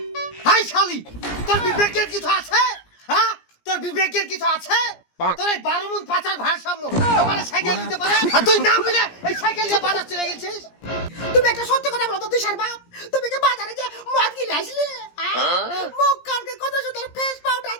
হাই শালি, তোর বিবেকের কিছু আছে? হ্যাঁ, তোর বিবেকের কিছু আছে? তোর এই 12 মন পাচার ভারসাম্য তোমার সাইকেল দিতে পারে, আর তুই না বলে এই সাইকেল নিয়ে বাজার চলে গেছিস। তুমি একটা সত্যি কথা বলো তো তুষার বাপ, তুমি কি বাজারে যে মদ গিলে আসলে মুখ কানকে কত সুন্দর ফেস পাউডার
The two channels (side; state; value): right; late; 17 ms